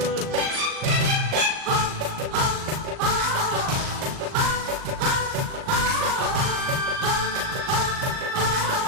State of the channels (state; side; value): late; left; 38 ms